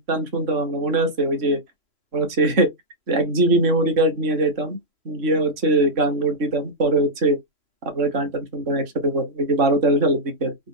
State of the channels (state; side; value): late; left; 3.0 ms